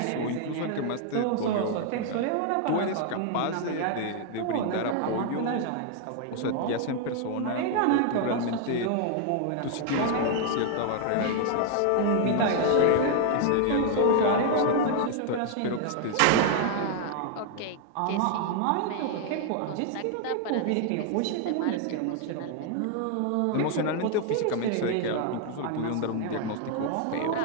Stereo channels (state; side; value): different; both; correlation 0.00